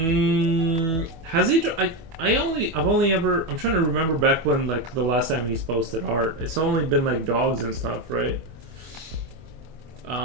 he? I'm trying to remember back when, like, the last time he's posted art. It's only been like dogs and stuff, right?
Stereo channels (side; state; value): left; late; 25 ms